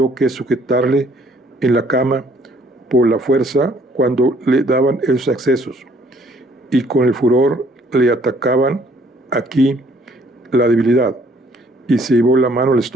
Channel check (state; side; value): normal; both; correlation 0.61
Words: que sujetarle en la cama por la fuerza cuando le daban esos accesos, y con el furor le atacaban aquí la debilidad, y se llevó la mano al